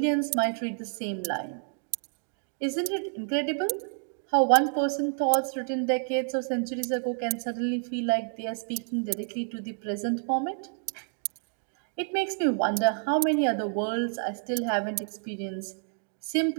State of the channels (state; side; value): silent; left; 59 dB below the other